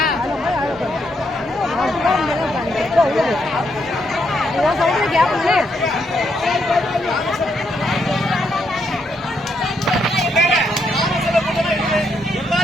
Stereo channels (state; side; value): normal; both; correlation 0.77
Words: நான் சொல்றது கேப்பல